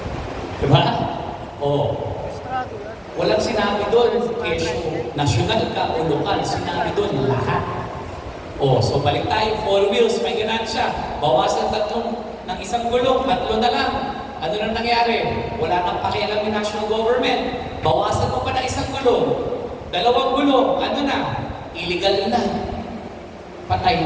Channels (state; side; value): identical; both; correlation 1.00